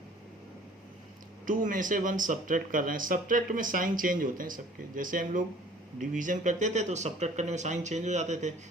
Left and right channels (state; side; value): normal; both; correlation 0.52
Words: 2 में से 1 सब्ट्रैक्ट कर रहे हैं. सब्ट्रैक्ट में साइन चेंज होते हैं सबके. जैसे हम लोग डिवीजन करते थे तो सब्ट्रैक्ट करने में साइन चेंज हो जाते थे,